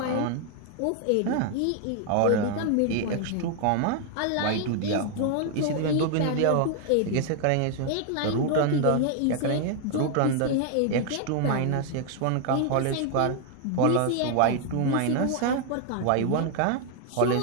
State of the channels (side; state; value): both; different; correlation 0.00